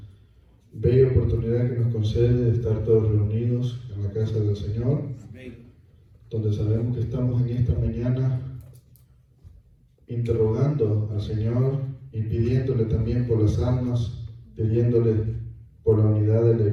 bella oportunidad que nos concede de estar todos reunidos en la casa del Señor, donde sabemos que estamos en esta mañana interrogando al Señor y pidiéndole también por las almas, pidiéndole por la unidad de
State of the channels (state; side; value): identical; both; correlation 1.00